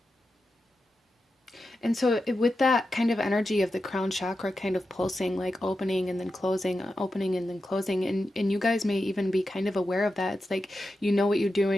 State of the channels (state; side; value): normal; both; correlation 0.90